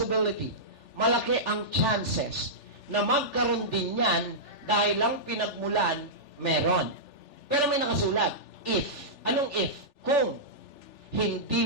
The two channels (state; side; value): late; right; 3.4 ms